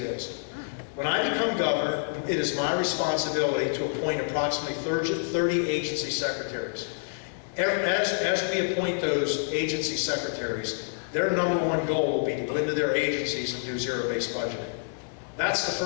is. When I become governor, it is my responsibility to appoint approximately 30 agency secretaries. As we appoint those agency secretaries, their #1 goal will be to go into their agencies and do zero-based budgeting. That's the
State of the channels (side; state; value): right; silent; digital silence